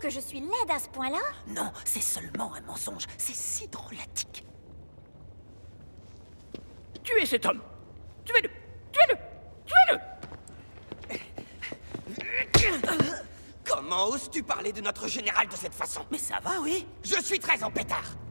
je suis laide à ce point-là? Non, c'est seulement un mensonge. C'est si drôlatique. Tuez cet homme! Tuez-le! Tuez-le! Tuez-le! Comment oses-tu parler de notre général de cette façon? Mais ça va, oui? Je suis très en pétard!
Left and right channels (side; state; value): both; inverted; correlation -1.00